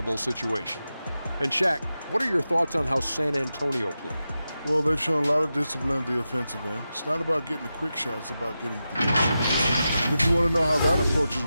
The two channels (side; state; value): both; inverted; correlation -0.91